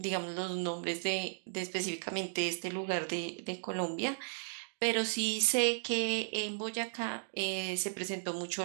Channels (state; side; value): silent; left; digital silence